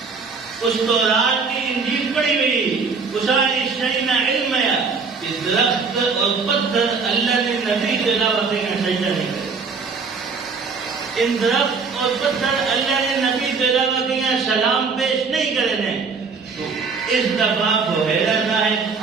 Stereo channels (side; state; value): left; quieter; 4.9 dB